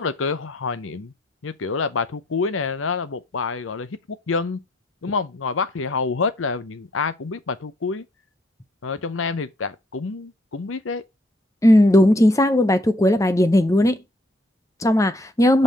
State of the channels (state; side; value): normal; both; correlation 0.66